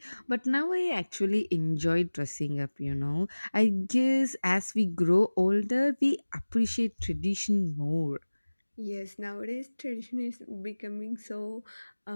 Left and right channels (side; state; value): both; inverted; correlation -1.00